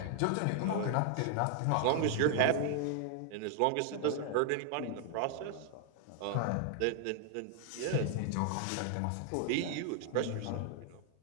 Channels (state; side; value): different; both; correlation 0.00